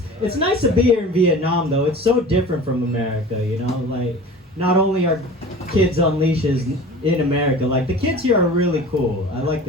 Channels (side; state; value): both; normal; correlation 0.39